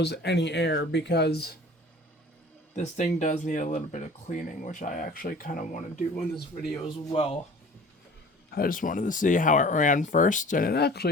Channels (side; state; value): both; normal; correlation 0.45